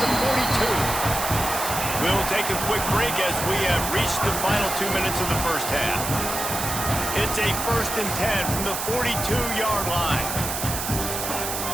the 42. We'll take a quick break as we have reached the final 2 minutes of the first half. It's a 1st and 10 from the 42-yard line.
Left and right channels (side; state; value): right; noise; hiss, 4 dB below the sound